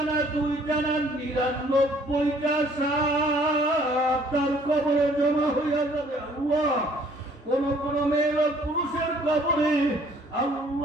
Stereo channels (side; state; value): both; normal; correlation 0.59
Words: না দুইটা না 99টা সাপ তার কবরে জমা হইয়া যাবে। আল্লাহ, কোন মেয়ে পুরুষের কবরে